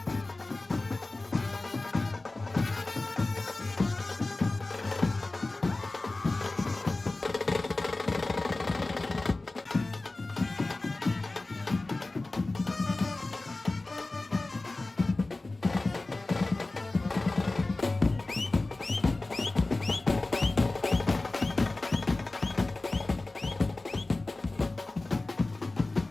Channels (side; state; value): right; quieter; 3.1 dB